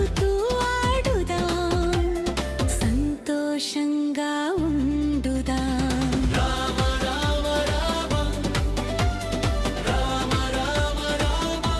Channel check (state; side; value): identical; both; correlation 1.00